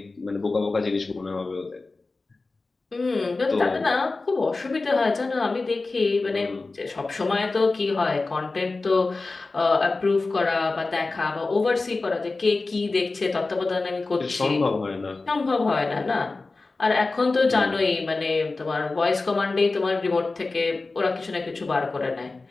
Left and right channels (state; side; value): quieter; right; 3.6 dB